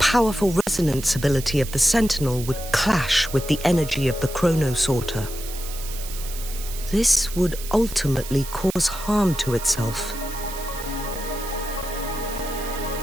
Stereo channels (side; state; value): right; noise; hiss, 11 dB below the sound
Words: resonance ability of the Sentinel would clash with the energy of the chronosorter. This would ultimately cause harm to itself.